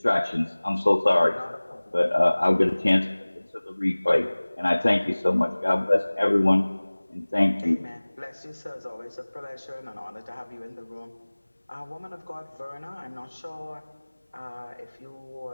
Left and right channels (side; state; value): both; inverted; correlation -1.00